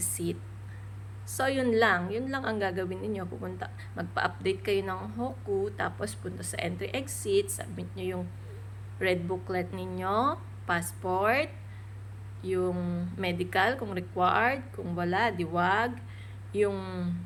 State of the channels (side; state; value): both; identical; correlation 1.00